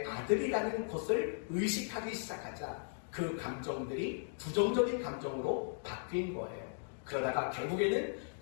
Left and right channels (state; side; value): silent; right; digital silence